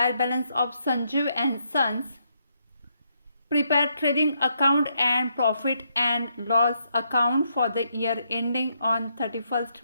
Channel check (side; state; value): both; inverted; correlation -0.77